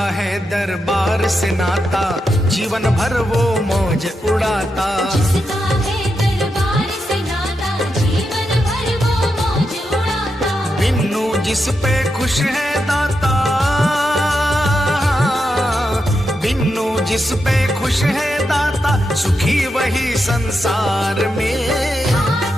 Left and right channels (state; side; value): normal; both; correlation 0.86